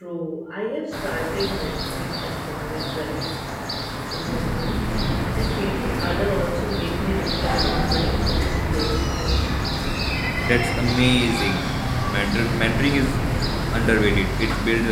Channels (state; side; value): identical; both; correlation 1.00